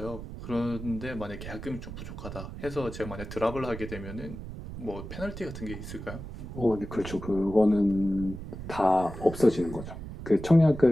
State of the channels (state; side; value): noise; right; rumble, 10 dB below the sound